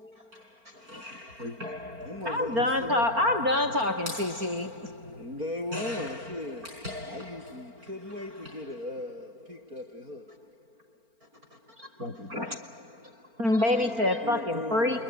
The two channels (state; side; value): late; left; 4.4 ms